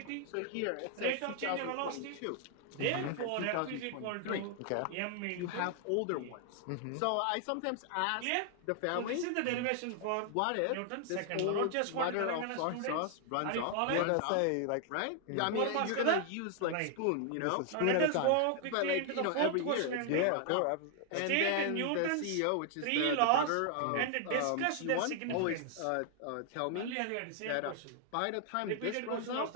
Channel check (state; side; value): different; both; correlation 0.00